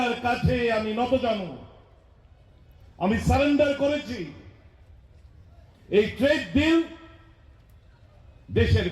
কাছে আমি নতজানু, আমি সারেন্ডার করেছি। এই ট্রেড ডিল দেশের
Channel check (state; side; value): identical; both; correlation 1.00